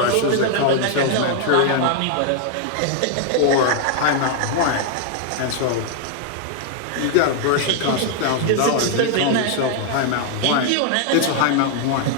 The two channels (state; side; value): different; both; correlation 0.00